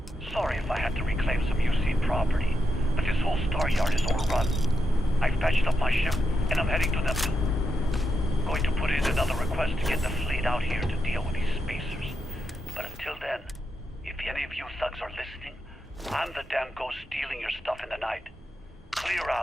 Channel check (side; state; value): both; normal; correlation 0.85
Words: Sorry if I had to reclaim some UC property, but this whole Staryard is overrun. I've patched up my ship, and I'm heading to Neptune. Going to put in another request to get the fleet out here to deal with these spacers. But until then, if any of you thugs are listening, I'm the damn ghost stealing your stuff in the night. Clear